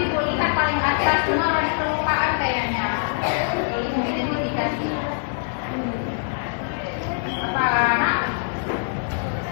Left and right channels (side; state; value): right; silent; digital silence